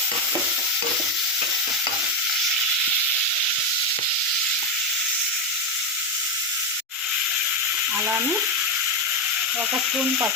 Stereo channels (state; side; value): normal; both; correlation 0.08